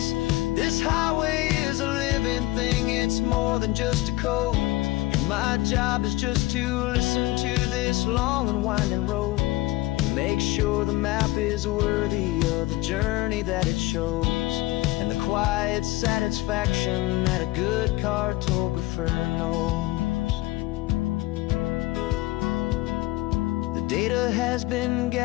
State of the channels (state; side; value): quieter; right; 19.3 dB